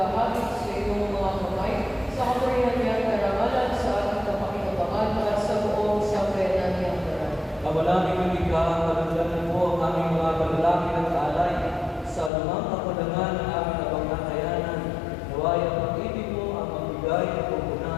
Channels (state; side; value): drops out; right; at 12.3 s